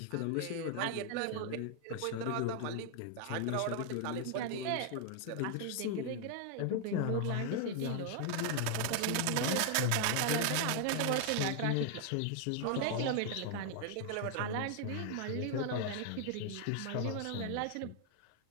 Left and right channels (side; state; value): both; different; correlation 0.00